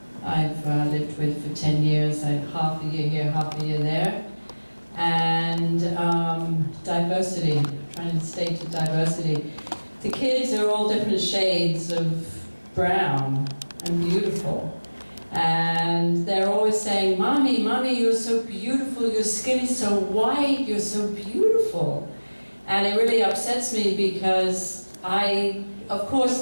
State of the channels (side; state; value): both; inverted; correlation -1.00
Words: I've lived with for 10 years. I have half a year here, half a year there. And diversity, trying to stay to diversity. The kids are all different shades of brown and beautiful. And they're always saying, "Mommy, Mommy, you're so beautiful, your skin is so white, you're so beautiful." And it really upsets me because of